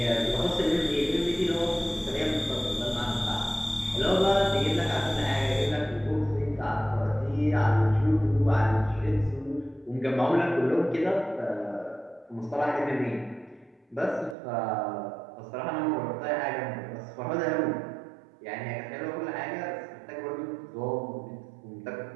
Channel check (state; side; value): drops out; left; at 14.4 s